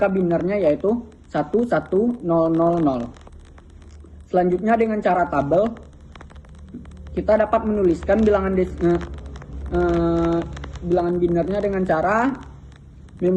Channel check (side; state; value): both; identical; correlation 1.00